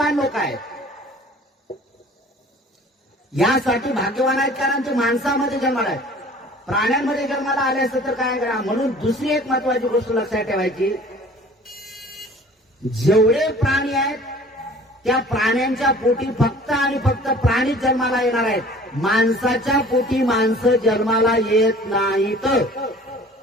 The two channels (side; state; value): both; normal; correlation 0.48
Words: लोक आहेत. यासाठी भाग्यवान आहेत कारण ते माणसामध्ये जन्माला आहेत. प्राण्यांमध्ये जन्माला आले असते तर काय करा. म्हणून दुसरी एक महत्वाची गोष्ट लक्षात ठेवायची, जेवढे प्राणी आहेत त्या प्राण्यांच्या पोटी फक्त आणि फक्त प्राणीच जन्माला येणार आहेत. माणसाच्या पोटी माणसं जन्माला येत नाहीत.